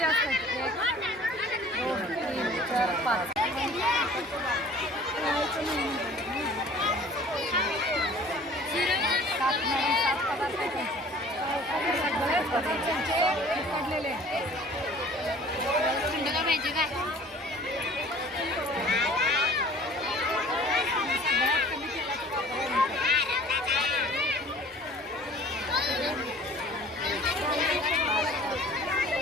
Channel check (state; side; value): normal; both; correlation 0.49